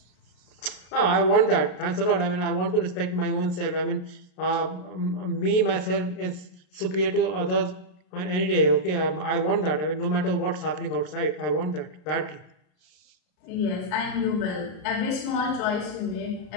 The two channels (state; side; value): late; right; 33 ms